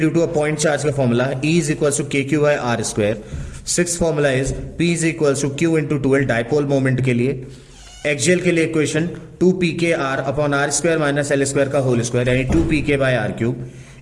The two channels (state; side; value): identical; both; correlation 1.00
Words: to a point charge का formula E is equals to K Q by R square. Six formula is P is equals to Q into 2L dipole moment के लिए। Axial के लिए equation 2pk r upon R square minus L square का whole square यानी 2pk by R cube.